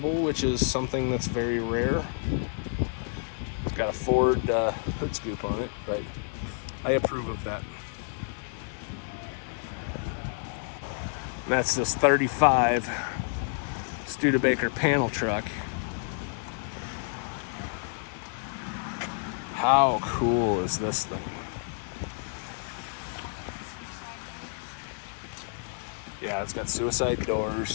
which is something that's very rare. It's got a Ford hood scoop on it, but I approve of that. And that's this 35 Studebaker panel truck. How cool is this thing? Yeah, it's got suicide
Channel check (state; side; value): silent; right; digital silence